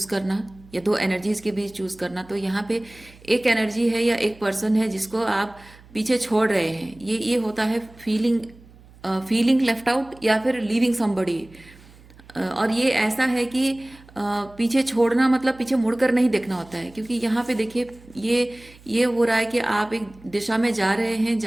करना या दो एनर्जीज के बीच चूज करना, तो यहाँ पे एक एनर्जी है या एक पर्सन है जिसको आप पीछे छोड़ रहे हैं। ये होता है फीलिंग लेफ्ट आउट या फिर लीविंग समबडी। और ये ऐसा है कि पीछे छोड़ना मतलब पीछे मुड़कर नहीं देखना होता है, क्योंकि यहाँ पे देखिए ये हो रहा है कि आप एक दिशा में जा रहे हैं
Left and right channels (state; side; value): noise; right; hum, 24 dB below the sound